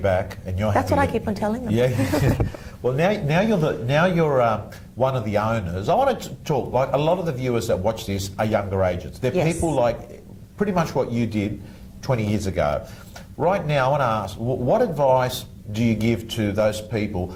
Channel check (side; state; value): both; identical; correlation 1.00